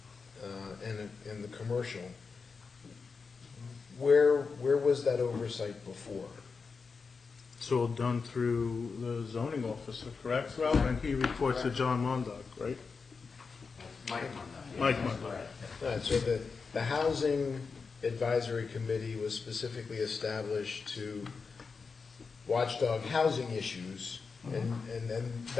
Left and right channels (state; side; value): quieter; right; 4.9 dB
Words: and the commercial, where was that oversight before? It's all done through the zoning officer, correct, Ralph? And he reports to John Mondock, right? Mike Mondock. All right, so the Housing Advisory Committee was specifically established to watchdog housing issues, and